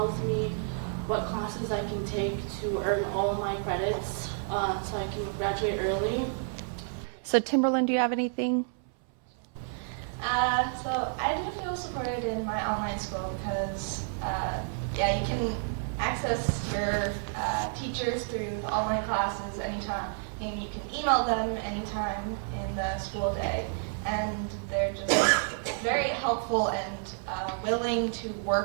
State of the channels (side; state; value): left; silent; 58 dB below the other